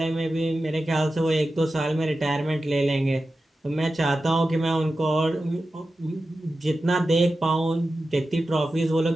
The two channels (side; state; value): both; normal; correlation 0.93